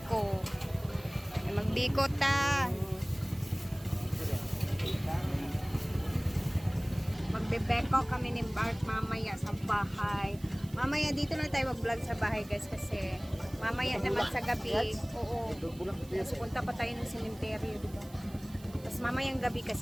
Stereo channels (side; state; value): right; noise; hiss, 22 dB below the sound